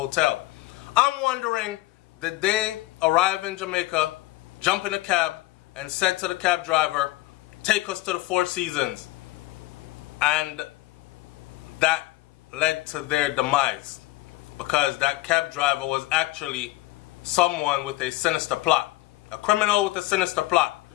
I'm wondering, did they arrive in Jamaica, jump in a cab, and said to the cab driver, "Take us to the 4 Seasons," and that led to their demise, because that cab driver was actually someone with a sinister plot, a criminal with a sinister plot,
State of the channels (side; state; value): right; quieter; 19.2 dB